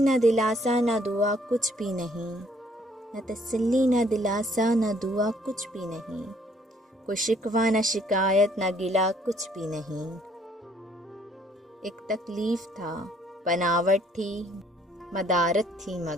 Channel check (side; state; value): both; normal; correlation 0.63